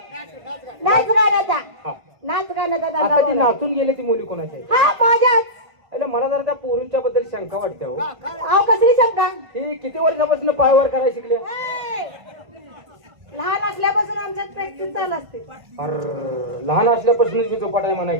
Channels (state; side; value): late; left; 1.5 ms